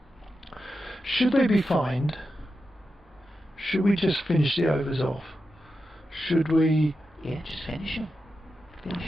should they be fined? Should we just finish the overs off? Should we... Yeah, just finish them.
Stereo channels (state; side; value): normal; both; correlation 0.89